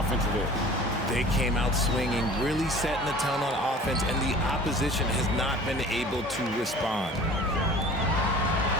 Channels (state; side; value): normal; both; correlation 0.45